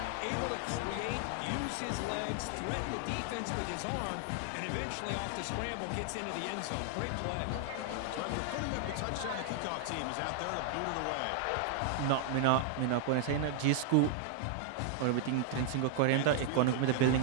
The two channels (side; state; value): both; different; correlation -0.01